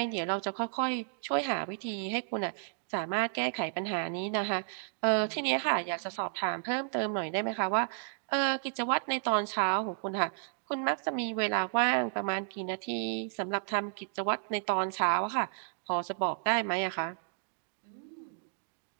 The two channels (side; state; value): left; silent; digital silence